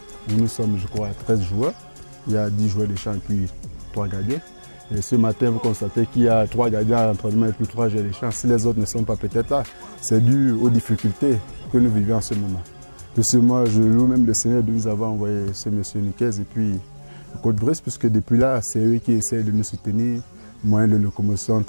Nous sommes, je crois, 13 joueurs. Il y a 10 joueurs de champ et puis 3 gardiens. Et ce matin, vous constatez qu'il y a 3 gardiens à l'entraînement et puis 3 joueurs de champ. Si les autres ne sont pas peut-être là, c'est dû aux difficultés que nous vivons en ce moment. De ce mois, je loue même le Seigneur de nous avoir envoyé ce monsieur Niquez et puis le Côte-Bresse, puisque depuis là, c'est eux qui essaient de nous soutenir. Moyens de locomotion,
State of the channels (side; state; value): both; inverted; correlation -1.00